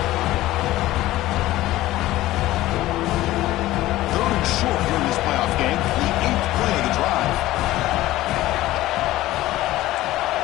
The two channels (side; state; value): right; quieter; 16.2 dB